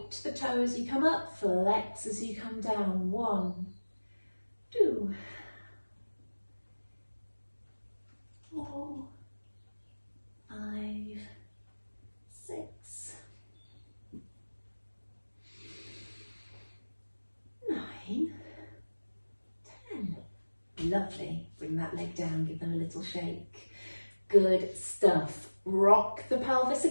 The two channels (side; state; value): both; inverted; correlation -1.00